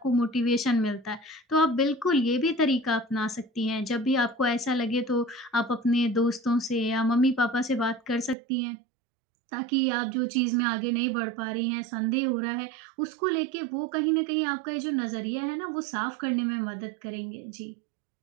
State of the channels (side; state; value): left; drops out; at 8.3 s